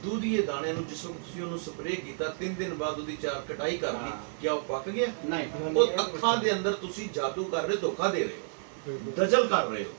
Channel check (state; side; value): silent; left; digital silence